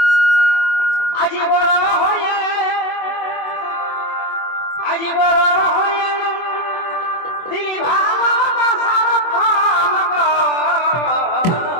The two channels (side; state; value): right; late; 24 ms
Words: আজি বড় হয়ে আজি বড় হয়ে দিলি ভালোবাসার ফল গো